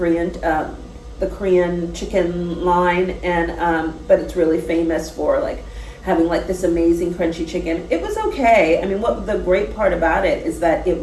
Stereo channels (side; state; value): both; identical; correlation 1.00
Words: chicken line, and but it's really famous for like having like this amazing crunchy chicken. It was okay. I mean, what the great part about it is that it